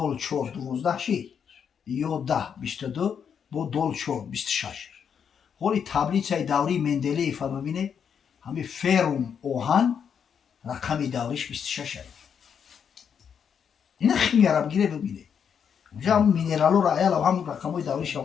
4 12 شید 11 22 با دال 4 26. حالی تبلیغ دوری مندلیف ببینه همه فرم اوهان رقم دوریش 26 اینا خیلی عرب گیره ببینه اونجا هم مینرالو را ایال هم رقمای دوریش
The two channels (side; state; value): right; quieter; 7.4 dB